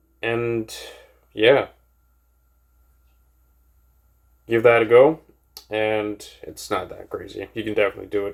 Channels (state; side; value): identical; both; correlation 1.00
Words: And yeah, give that a go. And it's not that crazy. You can definitely do it.